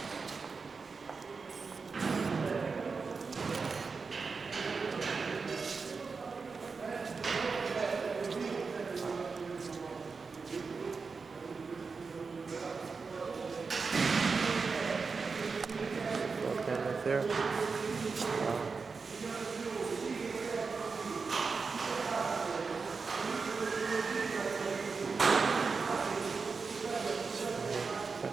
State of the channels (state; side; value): quieter; left; 4.8 dB